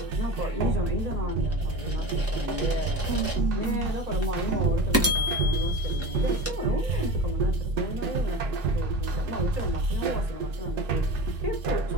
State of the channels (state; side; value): normal; both; correlation 0.32